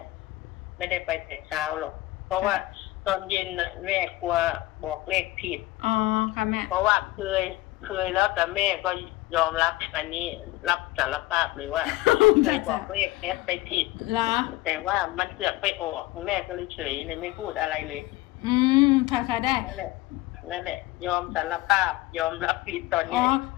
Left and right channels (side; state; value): right; quieter; 18.6 dB